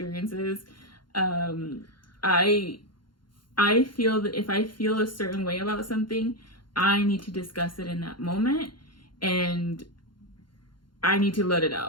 I feel that if I feel a certain way about something, I need to discuss it in that moment, and I need to let it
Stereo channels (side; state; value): right; late; 0.72 ms